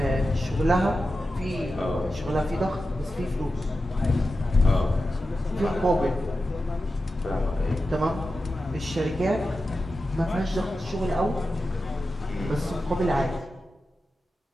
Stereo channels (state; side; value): normal; both; correlation 0.92